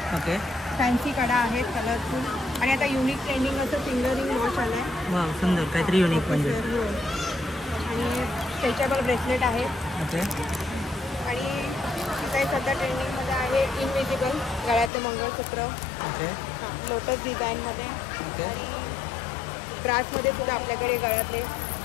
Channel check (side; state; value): right; drops out; at 14.9 s